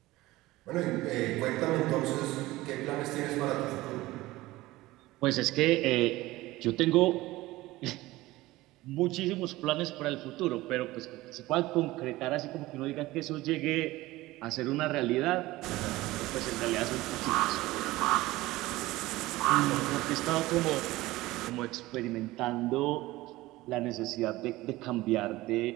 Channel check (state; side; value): quieter; left; 18.5 dB